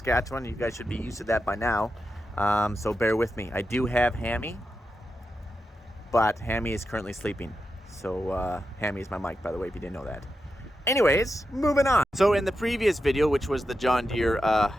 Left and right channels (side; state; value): both; normal; correlation 0.89